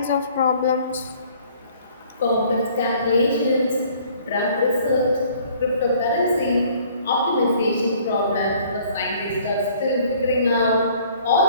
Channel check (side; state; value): both; inverted; correlation -0.56